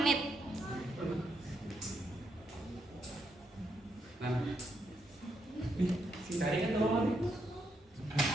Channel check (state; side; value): normal; both; correlation 0.79